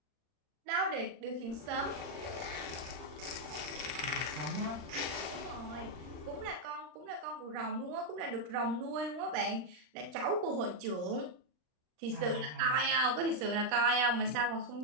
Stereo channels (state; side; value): late; left; 39 ms